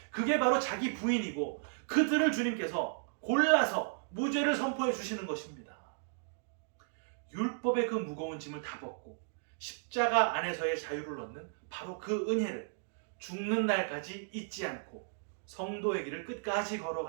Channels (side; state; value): left; silent; digital silence